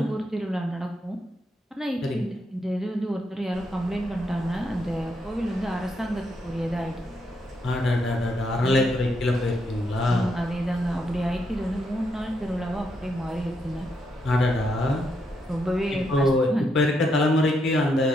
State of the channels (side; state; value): both; normal; correlation 0.78